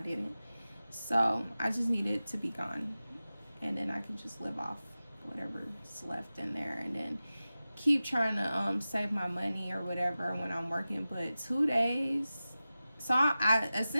didn't. So I just need it to be gone, and then I can just live off whatever's left in there, and then keep trying to save my money or whatever when I'm working. But 2 days, so I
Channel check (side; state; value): both; inverted; correlation -0.95